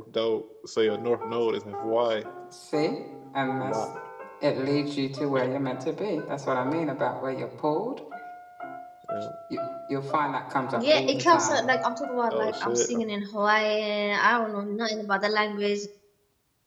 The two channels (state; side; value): identical; both; correlation 1.00